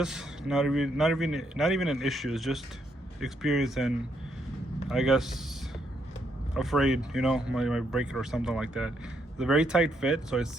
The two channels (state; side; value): normal; both; correlation 0.75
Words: Not even an issue. It's just experience and I guess afraid, you know, might break it or something like that. It's a very tight fit, so it